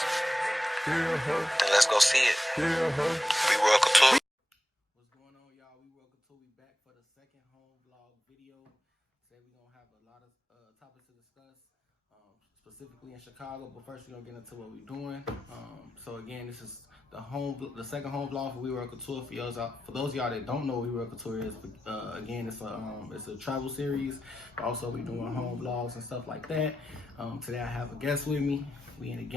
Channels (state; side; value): normal; both; correlation 0.90